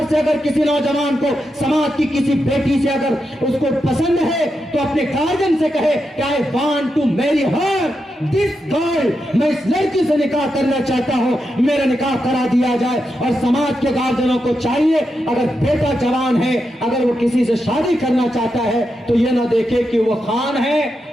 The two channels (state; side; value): normal; both; correlation 0.86